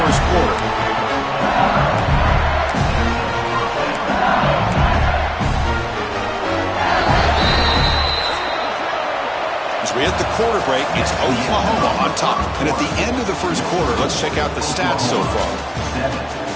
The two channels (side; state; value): both; identical; correlation 1.00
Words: first quarter. As we hit the quarter break, it's Oklahoma on top. And at the end of the first quarter, let's check out the stats so far.